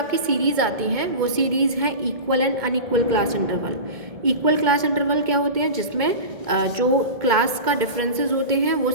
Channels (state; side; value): late; left; 1.7 ms